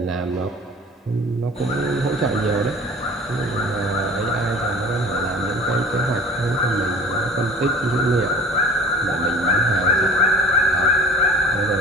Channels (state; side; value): normal; both; correlation 0.44